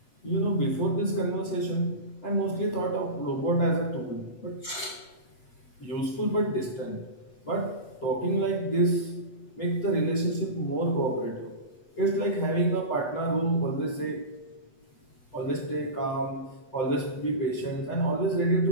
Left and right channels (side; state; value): right; late; 8.2 ms